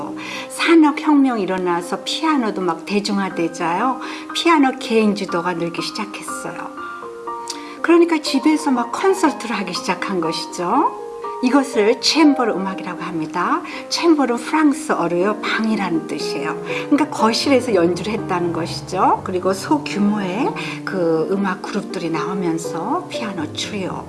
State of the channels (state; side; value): identical; both; correlation 1.00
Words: 산업혁명이 일어나서 피아노도 막 대중화되자요. 피아노 개인주도가 늘기 시작했어요. 그러니까 집에서 막 콘서트를 하기 시작한 것이죠. 이것을 챔버르 음악이라고 합니다. 챔버르는 프랑스어로요 방이라는 뜻이에요. 그러니까 거실에서 연주를 했다는 것이죠. 그리고 소규모의 그 음악 그룹들이 나오면서 피아노 트리오,